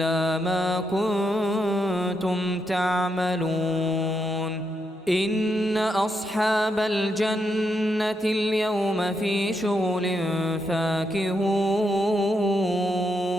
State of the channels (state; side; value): normal; both; correlation 0.81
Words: ما كنتم تعملون إن أصحاب الجنة اليوم في شغل فاكهون